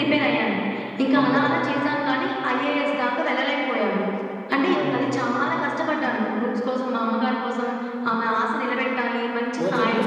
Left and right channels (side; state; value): both; identical; correlation 1.00